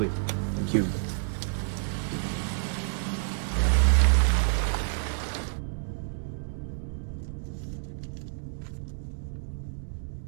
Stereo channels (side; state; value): left; silent; digital silence